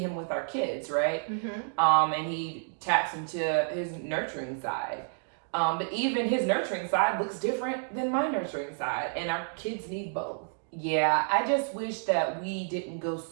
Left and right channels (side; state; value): left; silent; digital silence